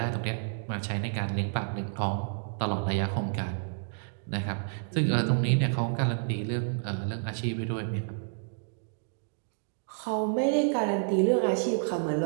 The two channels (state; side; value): silent; left; digital silence